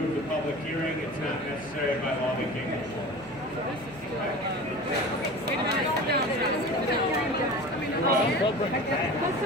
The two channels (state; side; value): noise; left; hum, 26 dB below the sound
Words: the public hearing. It's not necessary by law they can't move forward.